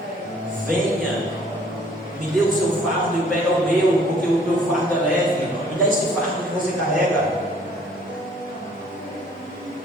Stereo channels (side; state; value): both; normal; correlation 0.58